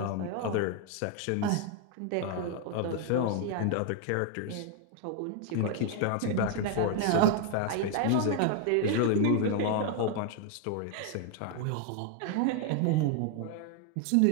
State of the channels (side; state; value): both; different; correlation 0.00